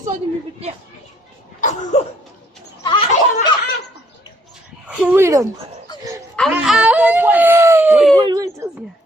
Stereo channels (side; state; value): both; normal; correlation 0.66